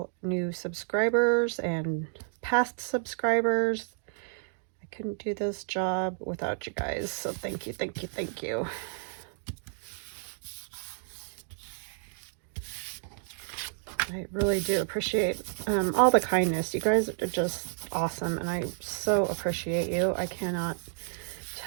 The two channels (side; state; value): left; silent; digital silence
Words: new subscribers and past subscribers. I couldn't do this job without you guys, so thank you, thank you, thank you. I really do appreciate all the kindness. You guys are just awesome, and I so appreciate you. I cannot